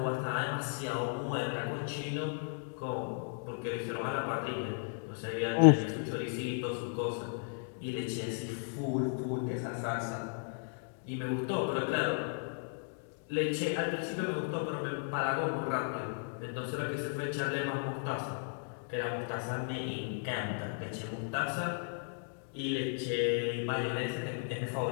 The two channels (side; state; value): right; silent; digital silence